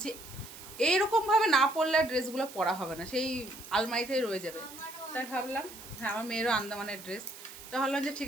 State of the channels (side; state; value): right; noise; hiss, 15 dB below the sound